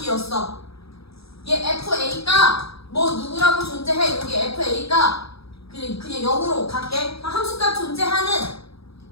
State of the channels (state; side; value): late; right; 0.77 ms